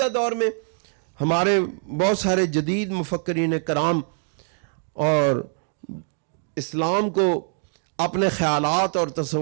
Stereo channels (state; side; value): silent; left; 63 dB below the other